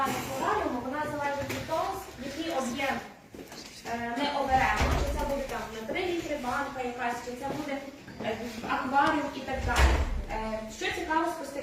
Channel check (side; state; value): both; identical; correlation 1.00